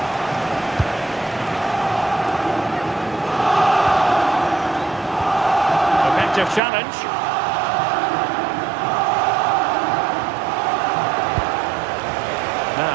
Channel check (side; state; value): left; drops out; at 6.6 s